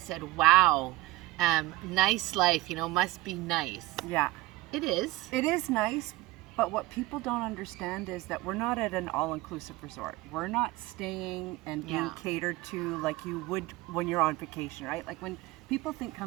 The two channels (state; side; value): quieter; left; 18.9 dB